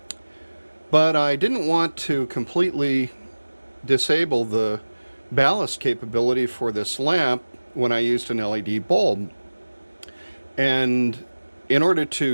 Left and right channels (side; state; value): both; inverted; correlation -1.00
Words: But I didn't want to completely disable the ballast capability for this lamp when I used an LED bulb. And in order